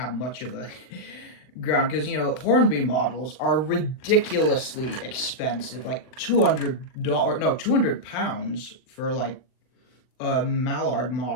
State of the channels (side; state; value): right; late; 40 ms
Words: much of a ground, because, you know, Hornby models are ridiculously expensive. Like £200 for like a Mallard